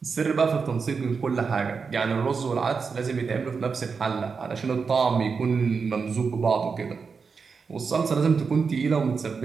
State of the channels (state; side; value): quieter; left; 5.3 dB